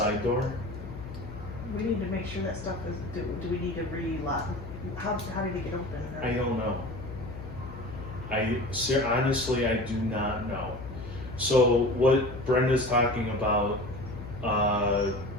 door? we need to make sure that stuff is, do we need to re-lock? How did it get open? I don't know. Honestly, I do not know. So what Brenda's talking about,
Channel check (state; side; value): noise; left; hum, 11 dB below the sound